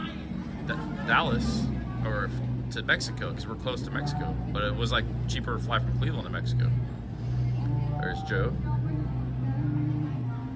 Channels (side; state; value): both; identical; correlation 1.00